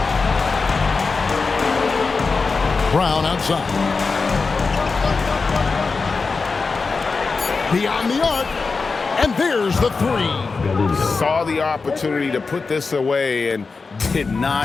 Brown outside. Beyond the arc, and there's the 3. Saw the opportunity to put this away and did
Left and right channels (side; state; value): right; quieter; 4.4 dB